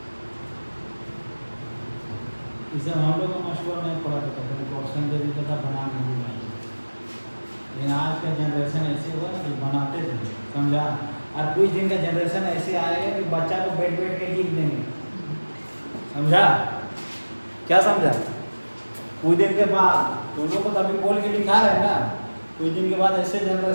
इसे हम लोग का मशहूर नहीं पढ़ा था, क्वेश्चन दे देता था बना नहीं पाए, लेकिन आज का जनरेशन ऐसे हुआ कि बनाते थे, समझा। और कुछ दिन का जनरेशन ऐसे आएगा कि बच्चा को बैठ बैठ के लिख देंगे, समझा, क्या समझा। कुछ दिन के बाद तुम लोग को तो अभी बोल के लिखा रहे ना, कुछ दिन के बाद ऐसे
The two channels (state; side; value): inverted; both; correlation -1.00